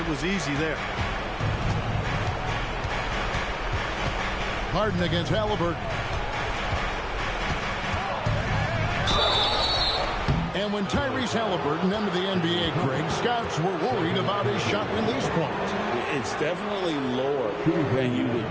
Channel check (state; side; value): identical; both; correlation 1.00